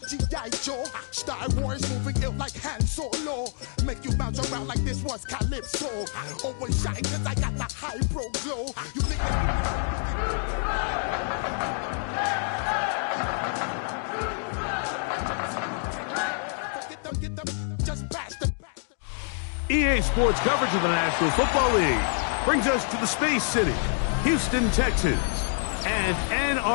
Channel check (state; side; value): silent; right; 60 dB below the other